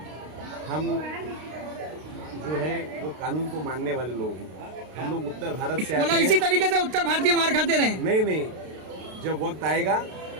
हम जो है वो कानून को मानने वाले लोग हैं। हम लोग उत्तर भारत से मतलब इसी तरीके से उत्तर भारतीय मार खाते रहे? नहीं, जब वक्त आएगा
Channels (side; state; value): left; late; 32 ms